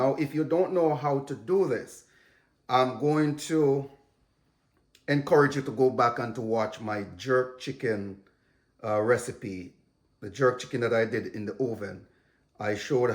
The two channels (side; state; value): both; identical; correlation 1.00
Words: if you don't know how to do this, I'm going to encourage you to go back and to watch my jerk chicken recipe, the jerk chicken that I did in the oven. I showed